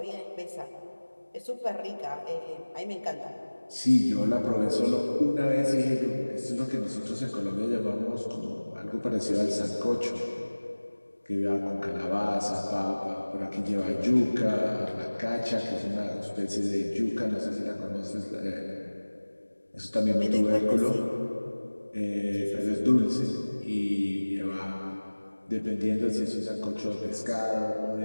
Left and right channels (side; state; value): both; inverted; correlation -1.00